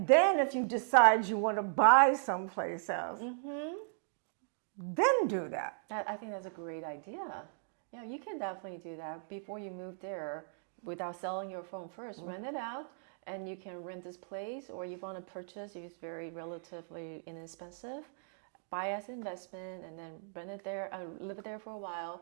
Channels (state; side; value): silent; left; digital silence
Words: then if you decide you want to buy someplace else, then do that. I think that's a great idea. Yeah, you can definitely do that before you move there without selling your phone first. Rent it out, and you can rent this place, or you want to purchase if it's very relatively inexpensive. Buy as investment, and then rent it there, live there for a while,